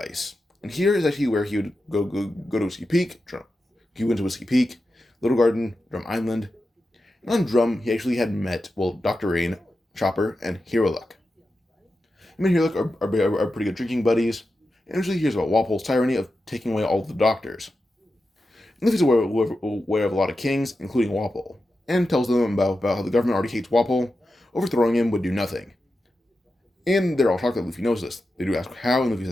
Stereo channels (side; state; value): both; normal; correlation 0.90